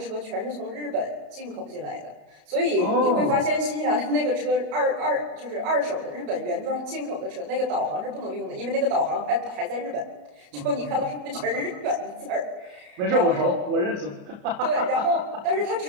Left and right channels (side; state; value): left; late; 34 ms